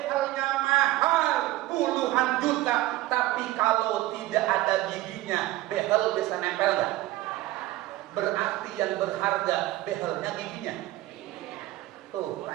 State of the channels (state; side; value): quieter; left; 16.9 dB